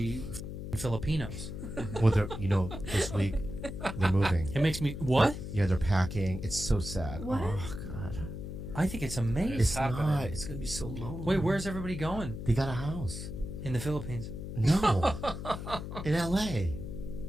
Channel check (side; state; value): left; noise; hum, 7 dB below the sound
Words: Filipinos. Well, this week they're moving. It makes me what? Yeah, they're packing. It's so sad. What? Oh God. I think it's amazing. It's not. It's gonna be so lonely. Wait, where's everybody going? They got a house. In the Philippines. No. In L.A.